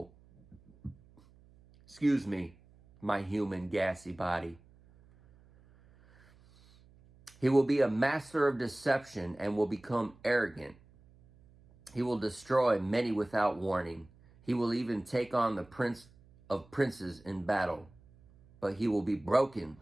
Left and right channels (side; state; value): right; noise; hum, 27 dB below the sound